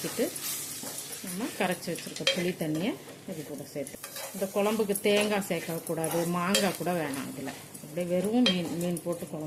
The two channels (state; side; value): identical; both; correlation 1.00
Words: நம்ம கரைச்சி வச்சுருக்க புளி தண்ணியை இது கூட சேர்த்து. இந்த குழம்புக்கு தேங்காய் சேர்க்கக்கூடாது, மாங்காய் கூட வேணாம். இதில் அப்படியே வெறும் மீன் போட்டு